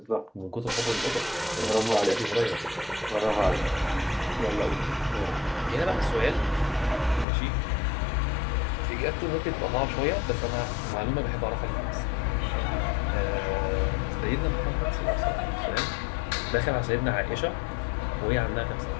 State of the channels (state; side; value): drops out; right; at 7.2 s